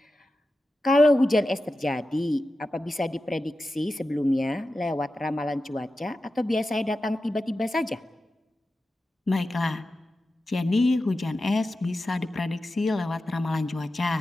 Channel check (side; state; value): both; normal; correlation 0.92